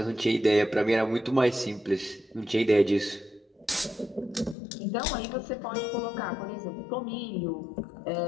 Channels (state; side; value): drops out; right; at 4.5 s